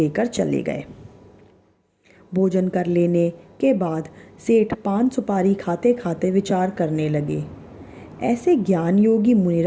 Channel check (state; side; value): identical; both; correlation 1.00